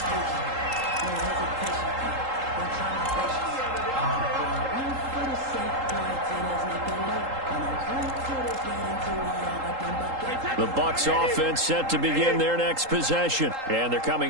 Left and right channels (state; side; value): late; left; 3.8 ms